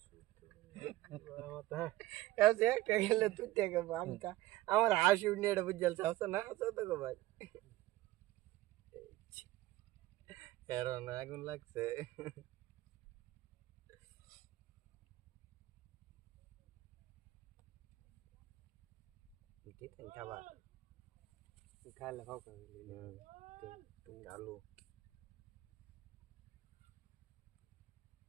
ऐसे একটা গেলে তুই থেকে বামটা আমার হাসি উঠে এটা বুঝাল আছে না আছে তো গো ভাই এরন আগুন লাগছে দিতেন খাবার খাইলে খাও করে আলু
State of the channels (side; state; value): left; quieter; 17.1 dB